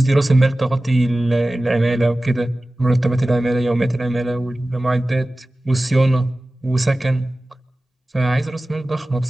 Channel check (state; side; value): normal; both; correlation 0.96